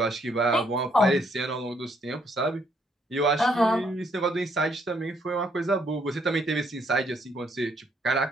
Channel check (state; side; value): normal; both; correlation 0.70